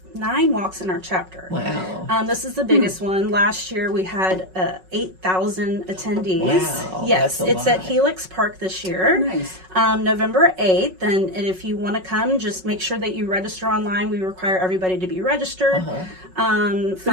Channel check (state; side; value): late; left; 5.4 ms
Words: 9 walks in our chapter. Wow. This is the biggest one. Last year we had 8,000 attendees. Wow, Yes, that's a it's at lot. Helix Park this year. Nice. November 8th. And if you want to come, just make sure that you register online. We require everybody to be registered. But